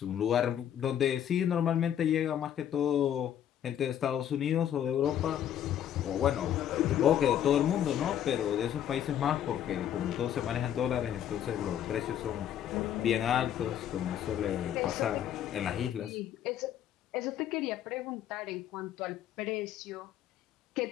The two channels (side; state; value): right; quieter; 10.3 dB